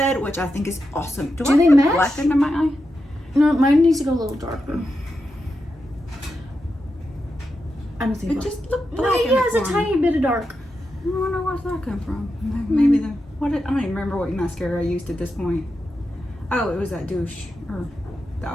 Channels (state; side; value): normal; both; correlation 0.88